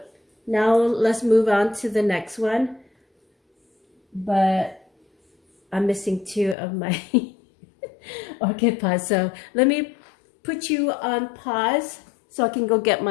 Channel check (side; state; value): right; drops out; at 6.6 s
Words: now let's move on to the next one. But I'm missing 2 of my orchid pots. So let me put you on pause so I can go get